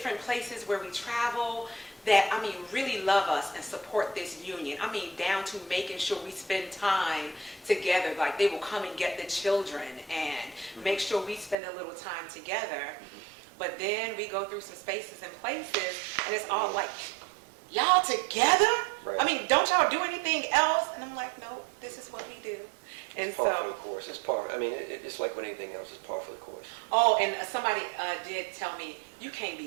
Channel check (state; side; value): drops out; left; at 11.6 s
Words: places where we travel that, really love us and support this union. Down to making sure we spend time together. Like they will come and get the children and make sure we spend a little time together. But then we go through some spaces and places and it's all like, y'all together? Right. Don't y'all do anything else? And I'm like, no, this is what we do. And It's par for the so, course. It's par. I mean, it's like with anything else. It's par for the course. oh, and somebody did tell me, you can't